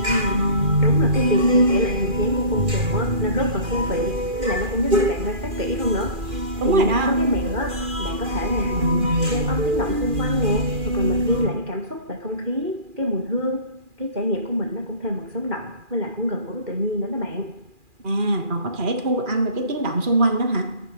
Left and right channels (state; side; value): late; left; 2.4 ms